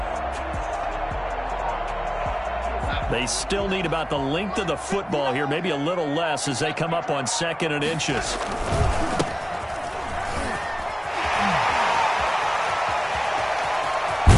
They still need about the length of the football here, maybe a little less as they come up on second and inches.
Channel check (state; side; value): identical; both; correlation 1.00